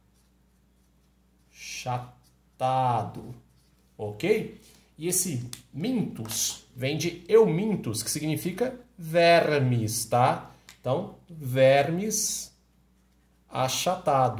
achatado, ok? E esse mintus vem de eumintus, que significa vermes, tá? Então, vermes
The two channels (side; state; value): both; identical; correlation 1.00